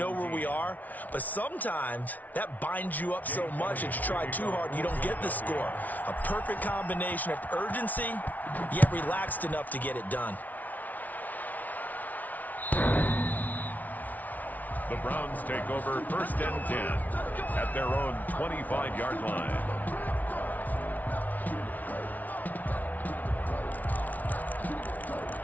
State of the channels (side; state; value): right; late; 0.076 ms